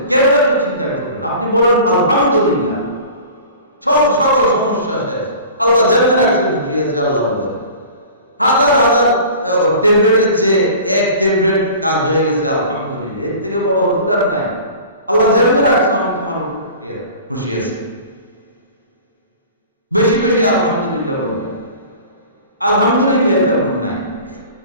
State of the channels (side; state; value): both; inverted; correlation -0.41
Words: কেন এত চিন্তা করবেন? আপনি বলেন আলহামদুলিল্লাহ, সকল সমস্যা শেষ, আল্লাহ জান্নাত রাখছে, খুশি আছে আল্লাহর উপরে। হাজার হাজার ট্যাবলেটের চেয়ে এক ট্যাবলেট কাজ হয়ে গেছে, আলহামদুলিল্লাহ। এর থেকে বড় ওষুধ আর নাই। আল্লাহ জান্নাত রাখছে, আমি তোমার খুশি আছি। বেশি বেশি আলহামদুলিল্লাহ বলবেন। আলহামদুলিল্লাহ তেমন নাই,